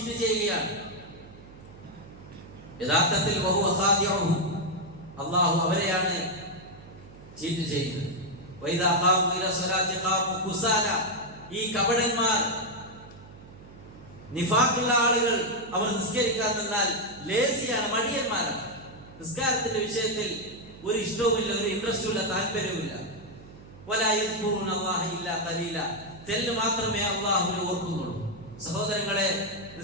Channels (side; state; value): right; noise; hum, 19 dB below the sound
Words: ചെയ്യുകയാണ്. യഥാർത്ഥത്തിൽ വഹുവ ഖാദിഉഹു, അല്ലാഹു അവരെയാണ് ചീറ്റ് ചെയ്യുന്നത്. വൈദാ ഖാമു ഇലാ സ്വലാത്തി ഖാമു കുസാല, ഈ കപടന്മാർ, നിഫാഖുള്ള ആളുകൾ, അവർ നിസ്കരിക്കാൻ നിന്നാൽ ലേസിയാണ്, മടിയന്മാരാണ്. നിസ്കാരത്തിന്റെ വിഷയത്തിൽ ഒരു ഇഷ്ടവുമില്ല, ഒരു ഇൻട്രസ്റ്റുമില്ല, താല്പര്യവുമില്ല. വലാ യദ്കുറുന അല്ലാഹ ഇല്ലാ ഖലീല, തെല്ല് മാത്രമേ അല്ലാഹുവിനെ ഓർക്കുന്നുള്ളൂ. സഹോദരങ്ങളെ,